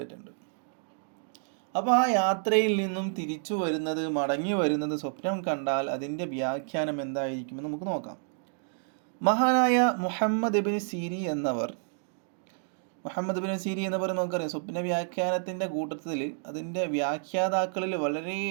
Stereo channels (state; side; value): silent; left; digital silence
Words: അപ്പോൾ ആ യാത്രയിൽ നിന്നും തിരിച്ചു വരുന്നത്, മടങ്ങി വരുന്നത് സ്വപ്നം കണ്ടാൽ അതിൻ്റെ വ്യാഖ്യാനം എന്തായിരിക്കുമെന്ന് നമുക്ക് നോക്കാം. മഹാനായ മുഹമ്മദ് ഇബ്നു സീരീൻ എന്നവർ നമുക്കറിയാം, സ്വപ്ന വ്യാഖ്യാനത്തിൻ്റെ കൂട്ടത്തിൽ അതിൻ്റെ വ്യാഖ്യാതാക്കളിൽ